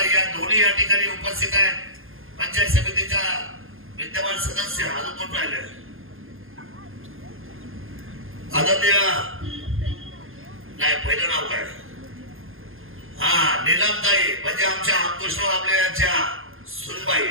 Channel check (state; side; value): late; left; 0.60 ms